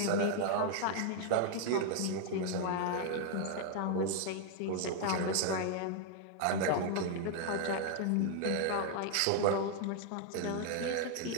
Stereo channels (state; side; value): different; both; correlation 0.00